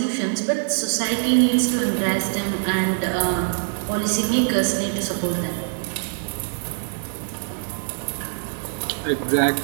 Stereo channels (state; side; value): silent; left; 63 dB below the other